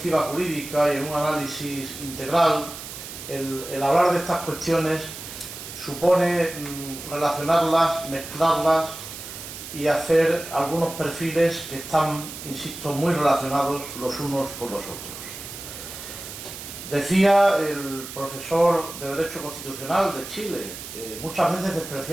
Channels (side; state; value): right; noise; hiss, 11 dB below the sound